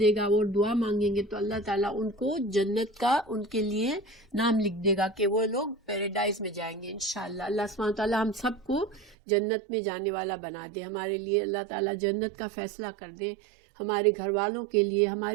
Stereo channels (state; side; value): drops out; left; at 9.2 s